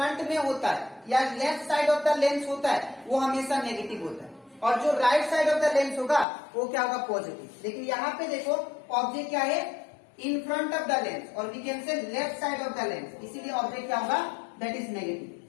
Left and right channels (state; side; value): drops out; right; at 6.2 s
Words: में होता है या left side of the lens होता है वो हमेशा नेगेटिव होता है, और जो right side of the lens होगा वो क्या होगा, पॉजिटिव। लेकिन यहाँ पे देखो ऑब्जेक्ट क्या है, in front of the lens, और we can say left side of the lens, इसीलिए ऑब्जेक्ट क्या होगा, दैट इज